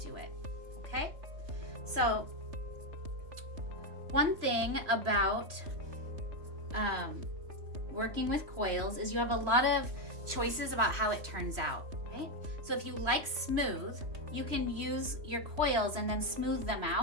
it, okay? So one thing about working with coils is you have a lot of choices about how it turns out, right? So if you like smooth, you can use your coils and then smooth them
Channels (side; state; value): left; late; 3.0 ms